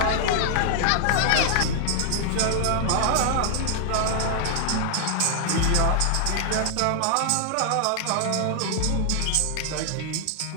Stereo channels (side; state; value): both; different; correlation 0.00